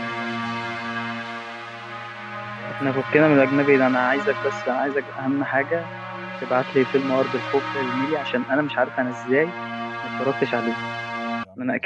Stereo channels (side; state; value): both; identical; correlation 1.00